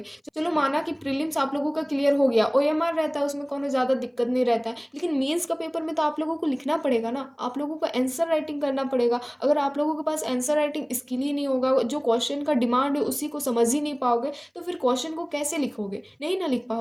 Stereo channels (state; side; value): identical; both; correlation 1.00